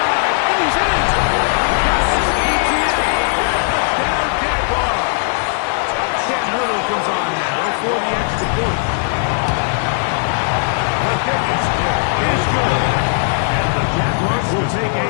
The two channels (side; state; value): right; silent; 68 dB below the other